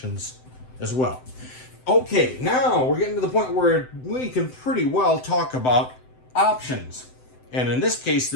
as well. Okay, now we're getting to the point where we can pretty well talk about options. And in this case,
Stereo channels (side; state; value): right; late; 7.8 ms